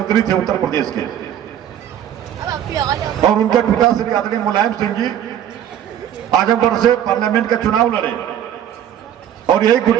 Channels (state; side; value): quieter; left; 10.4 dB